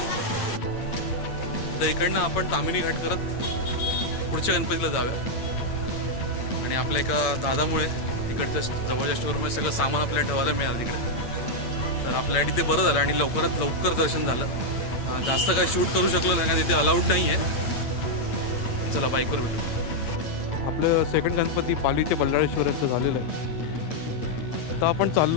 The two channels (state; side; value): late; right; 8.7 ms